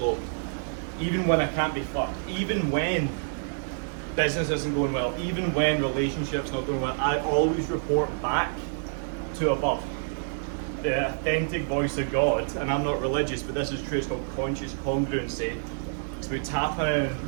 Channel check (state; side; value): silent; left; digital silence